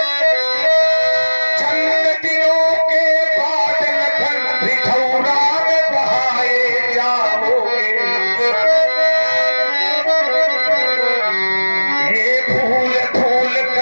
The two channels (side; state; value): both; inverted; correlation -1.00